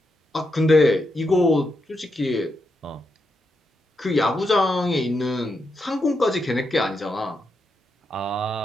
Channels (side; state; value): both; normal; correlation 0.83